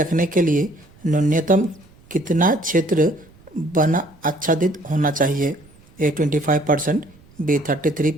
के लिए न्यूनतम कितना क्षेत्र वन आच्छादित होना चाहिए? ए 25%, बी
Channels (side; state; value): right; noise; rumble, 27 dB below the sound